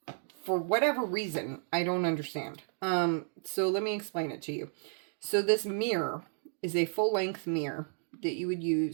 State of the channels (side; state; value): left; silent; digital silence